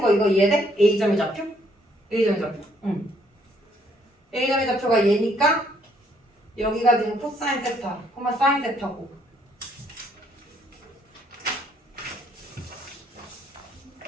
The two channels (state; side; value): normal; both; correlation 0.68